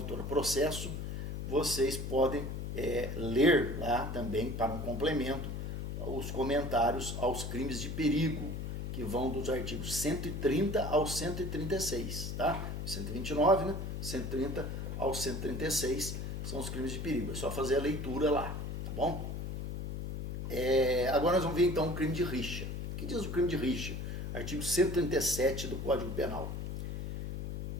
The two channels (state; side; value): noise; left; hum, 4 dB below the sound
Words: Processo, vocês podem ler lá também, para um complemento, os comentários aos crimes de perigo, que vão dos artigos 130 ao 136, tá? 129, né? 130 ao 136 são os crimes de perigo. É só fazer a leitura lá, tá bom? Agora nós vamos ver então o crime de rixa. O que diz o crime de rixa? Artigo 137 do Código Penal.